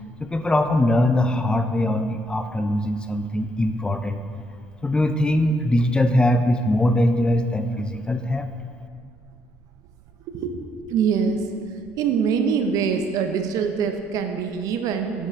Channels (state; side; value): noise; right; rumble, 28 dB below the sound